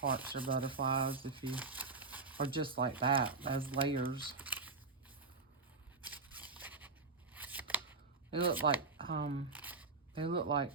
or butterflies if you, or just like that, as layers. They look like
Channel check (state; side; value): quieter; left; 4.1 dB